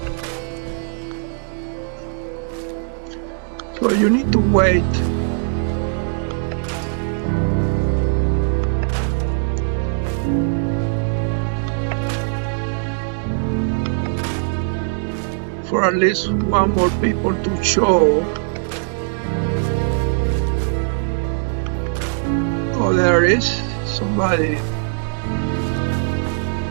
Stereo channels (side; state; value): left; silent; digital silence